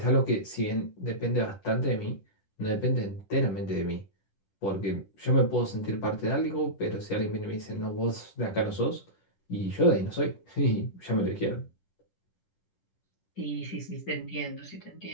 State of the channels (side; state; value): right; late; 10 ms